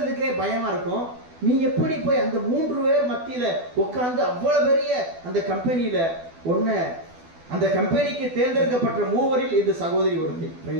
பயமா இருக்கும். நீ எப்படி போய் அந்த 3 பேர் மத்தியில உட்கார்ந்து அவ்வளவு பெரிய அந்த கம்பெனியில அந்த கம்பெனிக்கு தேர்ந்தெடுக்கப்பட்ட 3வரில் இந்த சகோதரி ஒருத்தி.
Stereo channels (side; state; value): left; late; 12 ms